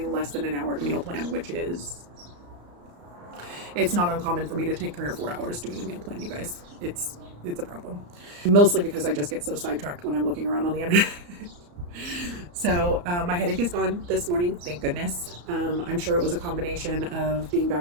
less than an hour to meal plan, which is... It's not uncommon for me to take 3 or 4 hours doing a meal plan, you guys. It's a problem. Mostly because I just get so sidetracked when I'm looking around on the internet. So my headache is gone this morning, thank goodness. I'm sure it was a combination of being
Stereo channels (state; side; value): late; left; 34 ms